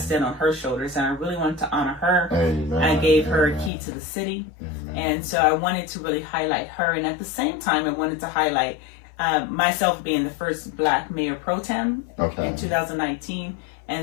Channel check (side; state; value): right; drops out; at 3.7 s